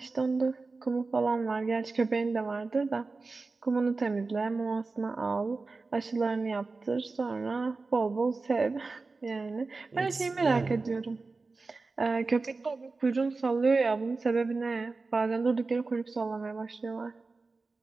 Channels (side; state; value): left; quieter; 3.9 dB